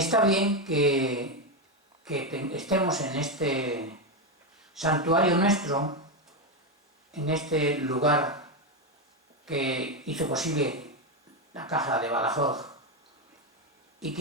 bien que estemos en este santuario nuestro, en este lugar que hizo posible la Caja de Badajoz y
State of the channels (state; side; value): normal; both; correlation 0.08